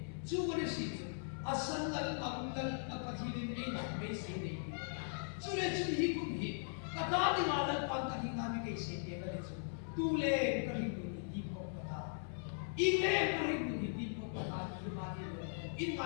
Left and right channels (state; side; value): silent; right; 51 dB below the other